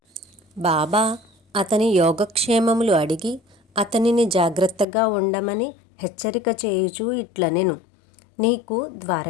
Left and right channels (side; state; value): right; drops out; at 4.9 s